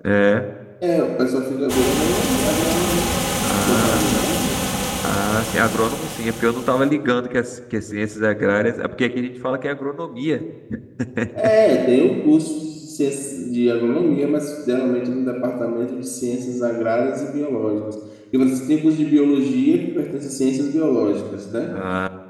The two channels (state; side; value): identical; both; correlation 1.00